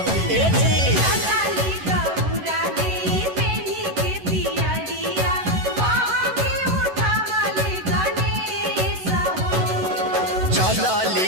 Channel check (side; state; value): left; late; 11 ms